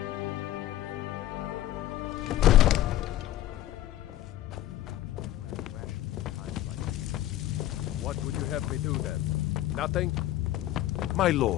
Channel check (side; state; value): right; quieter; 13.9 dB